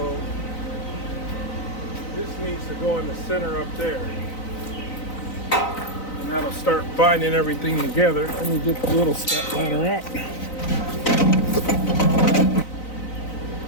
this needs to go in the center up there, and that'll start binding everything together. Let me get the little step ladder out.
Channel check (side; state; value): right; late; 3.9 ms